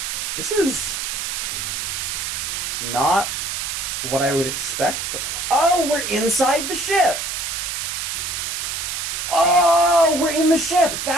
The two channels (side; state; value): right; noise; hiss, 3 dB below the sound